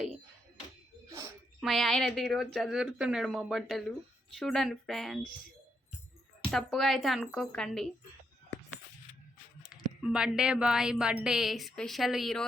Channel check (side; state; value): both; normal; correlation 0.79